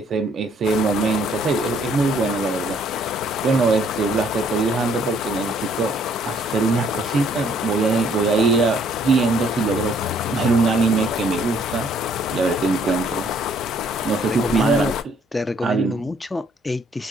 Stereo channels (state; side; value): normal; both; correlation 0.64